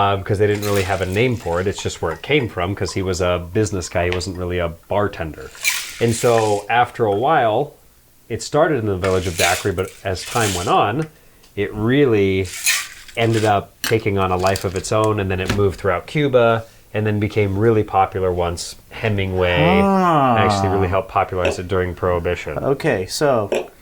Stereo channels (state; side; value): identical; both; correlation 1.00